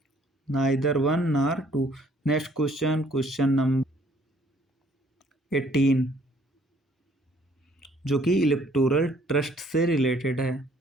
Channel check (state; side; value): normal; both; correlation 0.61